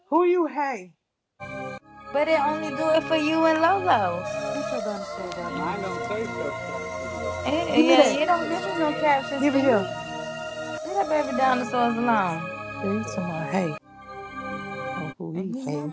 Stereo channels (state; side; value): identical; both; correlation 1.00